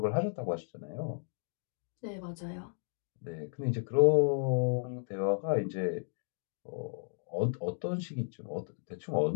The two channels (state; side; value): silent; right; 55 dB below the other